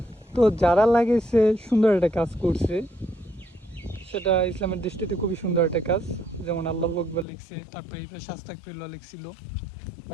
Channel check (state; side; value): drops out; right; at 7.2 s